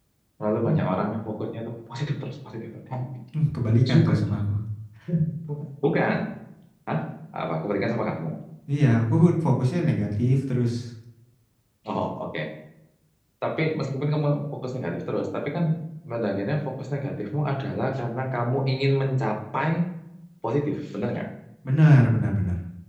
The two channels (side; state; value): both; identical; correlation 1.00